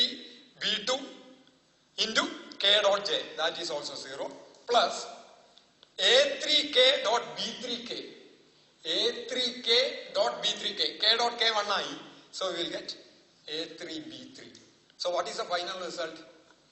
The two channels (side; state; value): both; identical; correlation 1.00